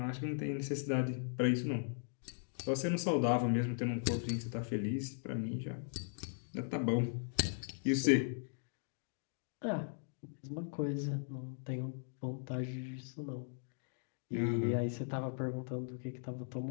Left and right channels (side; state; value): right; silent; digital silence